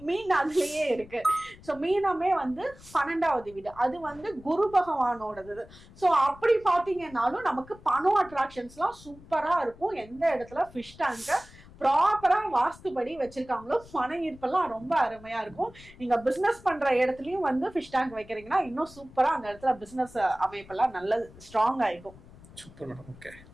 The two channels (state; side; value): noise; left; rumble, 21 dB below the sound